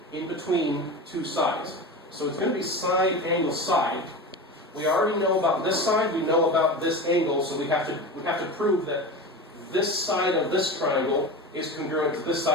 in between two sides. So it's going to be side, angle, side. We already know about this side, we know about this angle, so we have to prove that this side of this triangle is congruent to this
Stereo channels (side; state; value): both; normal; correlation 0.27